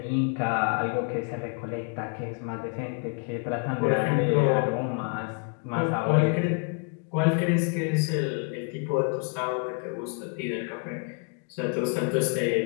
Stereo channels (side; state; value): right; quieter; 38.8 dB